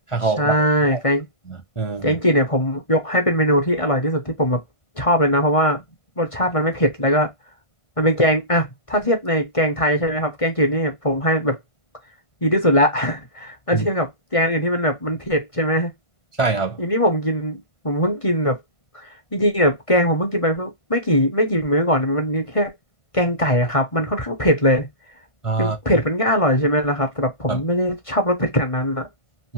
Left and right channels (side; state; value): right; late; 1.6 ms